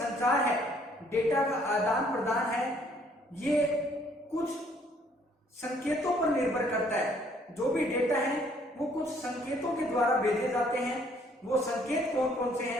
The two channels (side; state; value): both; normal; correlation 0.63